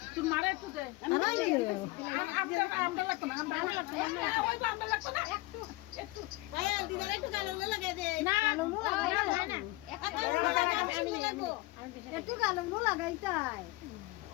তুই মারে একটু দে আমরা লাগতো না আমরা লাগতো না ওই আমরা লাগতো না একটু ভাই দিদার একটু কালো লাগাই দে না কালো না একটু লাগবো একটু কালো লাগাই চাই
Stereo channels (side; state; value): right; quieter; 21.3 dB